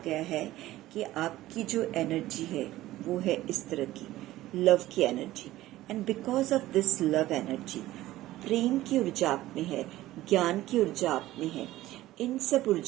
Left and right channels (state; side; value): quieter; left; 15.7 dB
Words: है कि आपकी जो एनर्जी है वो है इस तरह की लव की energy. And because of this love energy, प्रेम की ऊर्जा आप में है, ज्ञान की ऊर्जा आप में है, इन सब